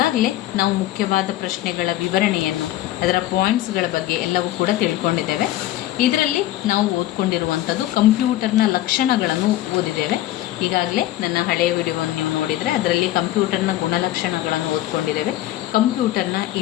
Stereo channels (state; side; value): quieter; right; 14.7 dB